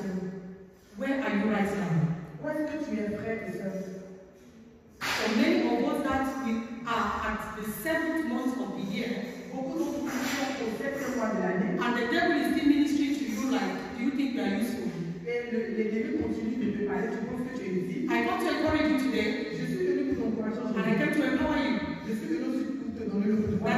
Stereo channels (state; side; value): identical; both; correlation 1.00